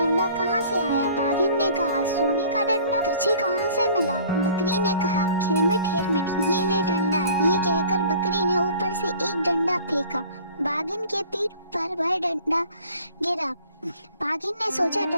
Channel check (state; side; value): inverted; both; correlation -0.49